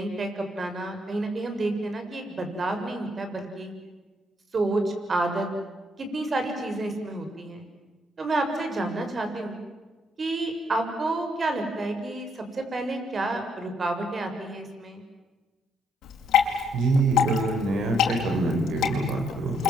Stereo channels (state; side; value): normal; both; correlation 0.72